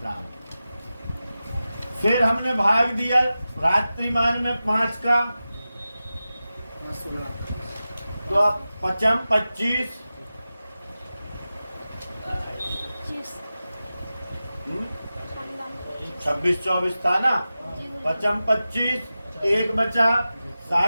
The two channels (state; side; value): inverted; both; correlation -0.94